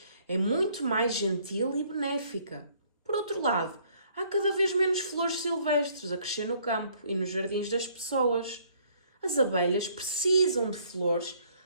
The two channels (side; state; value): both; inverted; correlation -0.62